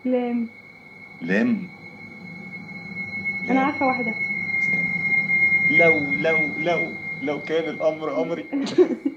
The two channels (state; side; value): identical; both; correlation 1.00